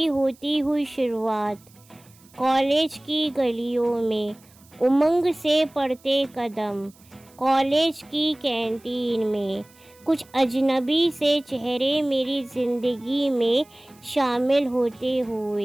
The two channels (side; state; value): right; noise; hiss, 28 dB below the sound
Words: होती हुई शुरुआत, कॉलेज की गलियों में उमंग से पड़ते कदम, कॉलेज की कैंटीन में कुछ अजनबी से चेहरे मेरी ज़िंदगी में शामिल होते